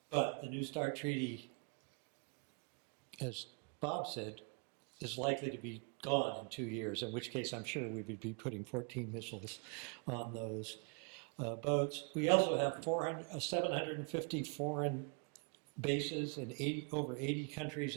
the New START treaty, as Bob said, is likely to be gone in 2 years, in which case I'm sure we would be putting 14 missiles on those boats. We also have 750 foreign bases in over 80 countries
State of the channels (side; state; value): left; quieter; 38.3 dB